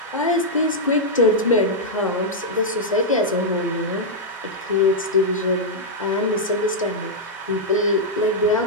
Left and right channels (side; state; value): both; normal; correlation -0.05